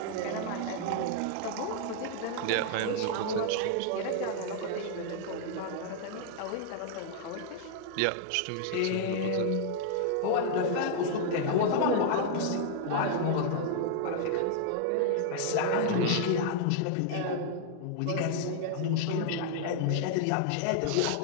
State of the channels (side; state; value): both; different; correlation 0.00